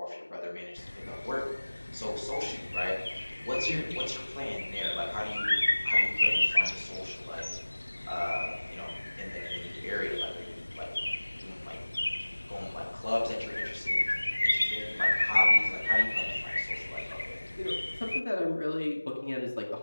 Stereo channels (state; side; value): inverted; both; correlation -1.00